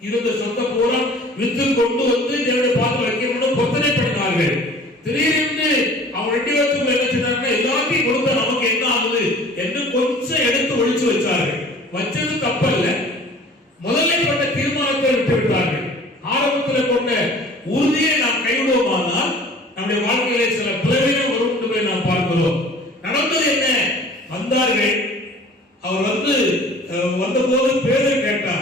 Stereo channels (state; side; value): normal; both; correlation 0.47